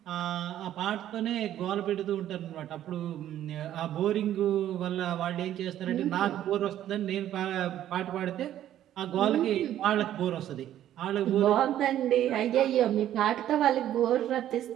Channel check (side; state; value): left; quieter; 11.9 dB